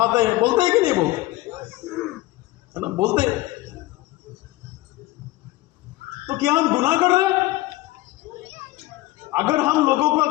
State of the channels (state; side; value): quieter; right; 18.1 dB